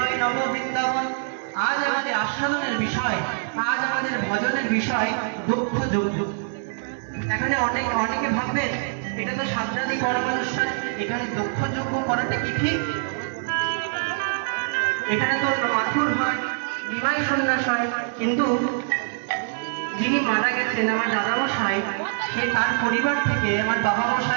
নব বৃন্দাবন। আজ আমাদের আস্বাদনের বিষয়, আজ আমাদের ভজনের বিষয় দক্ষ যজ্ঞ। এখানে অনেকে ভাববেন এটা তো সান্ত্রাদি কর্মানুষ্ঠান, এখানে দক্ষ যজ্ঞ করাটা কি ঠিক? এখানে তো মাথুর হয়, নিমাই সন্ন্যাস হয়, কিন্তু যিনি মারা গেছেন আমার দাদামশাই, সে তার পরিবার থেকে, আমার বাবা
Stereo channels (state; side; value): silent; left; digital silence